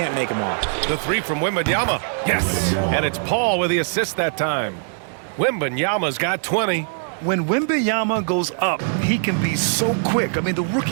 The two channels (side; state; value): left; silent; digital silence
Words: make him off. The three from Wembenyama. Yes. And it's Paul with the assist that time. Wembenyama's got 20. When Wembenyama goes up, he can be so quick. I mean, the